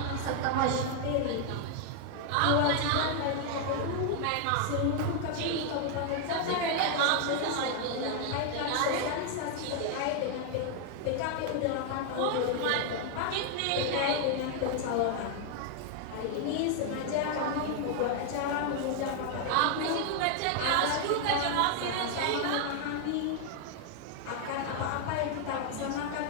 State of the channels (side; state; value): both; different; correlation 0.00